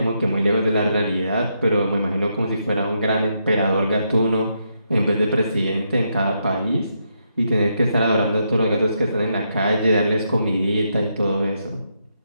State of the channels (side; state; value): both; inverted; correlation -0.79